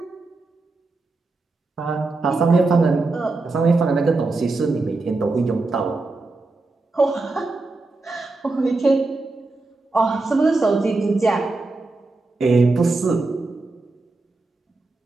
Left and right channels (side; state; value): left; quieter; 3.4 dB